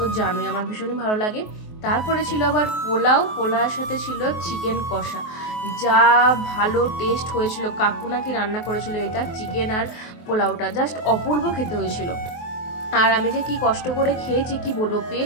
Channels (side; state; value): right; late; 23 ms